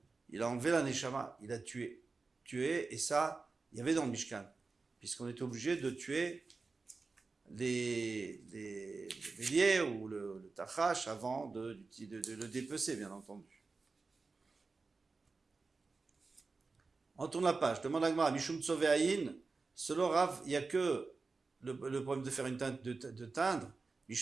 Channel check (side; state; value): left; quieter; 4.1 dB